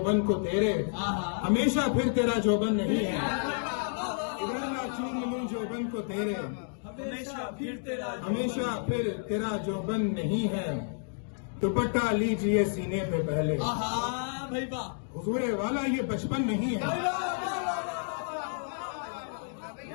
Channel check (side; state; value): right; silent; digital silence